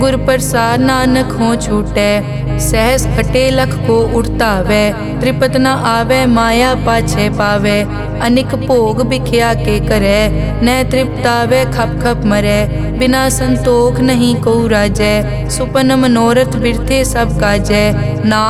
प्रसाद नानक हो छूटै, सहस खटे लख को उठतावै, त्रिपत न आवे माया पाछे पावे, अनिक भोग बिख्या के करे, न तृप्तावे खप खप मरै, बिना संतोख नहीं को राजै, सुपन मनोरथ बिरथे सब काजै,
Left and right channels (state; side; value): identical; both; correlation 1.00